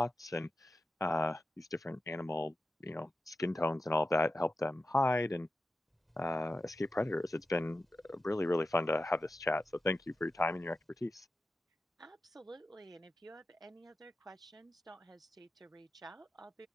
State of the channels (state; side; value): normal; both; correlation 0.92